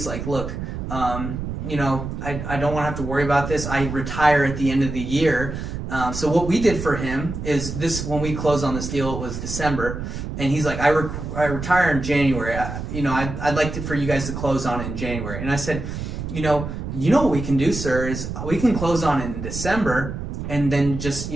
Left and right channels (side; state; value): right; noise; rumble, 6 dB below the sound